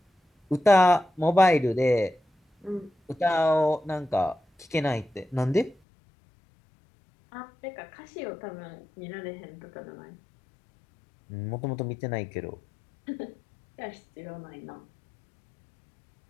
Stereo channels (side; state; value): right; drops out; at 5.8 s